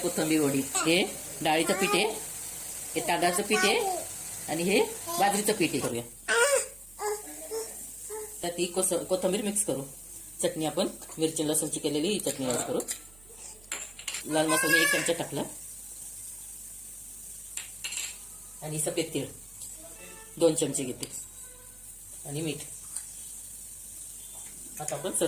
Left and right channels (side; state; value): right; noise; hum, 23 dB below the sound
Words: वडी. हे डाळीचं पीठ आहे, हे तांदळाचं पीठ आहे आणि हे बाजरीचं पीठ आहे. करूया तर ती कोथिंबीर मिक्स करू. चटणी आपण मिरची लसूणची केलेली ही चटणी ऍड करू. लाल मसाला 1 चमचा टाकला आणि सफेद तीळ 2 चमचे घेते आणि मीठ. आता आपण